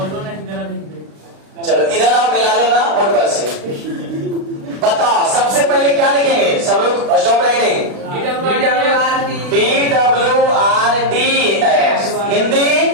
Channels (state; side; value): late; left; 36 ms